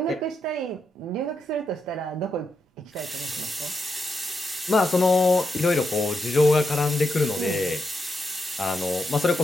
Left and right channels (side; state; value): both; normal; correlation 0.83